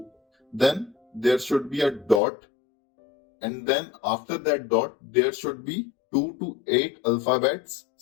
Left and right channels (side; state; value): right; drops out; at 2.2 s